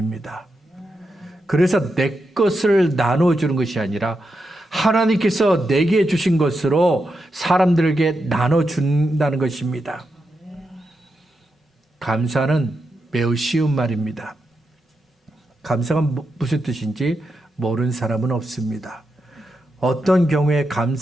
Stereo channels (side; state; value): both; normal; correlation 0.86